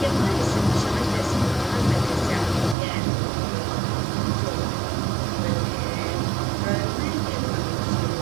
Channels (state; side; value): drops out; left; at 2.8 s